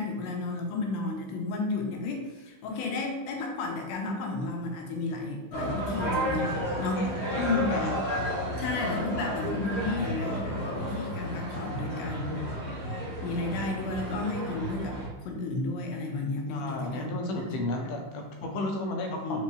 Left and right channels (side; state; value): right; late; 15 ms